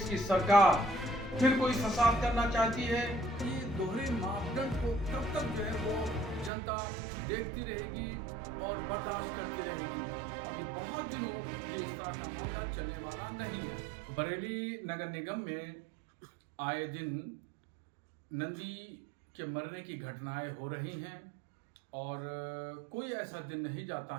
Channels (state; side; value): drops out; left; at 6.5 s